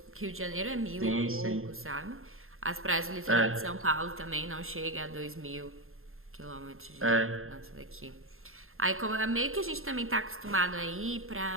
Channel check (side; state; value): left; late; 0.61 ms